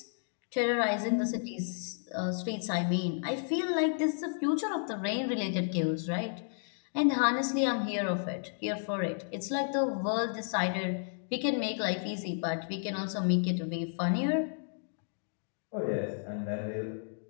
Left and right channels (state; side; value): silent; right; digital silence